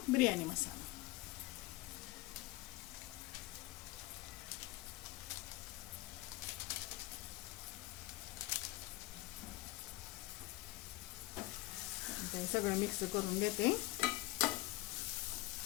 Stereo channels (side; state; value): right; quieter; 19.1 dB